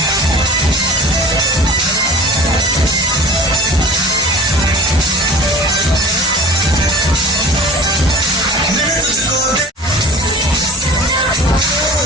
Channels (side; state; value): both; normal; correlation 0.42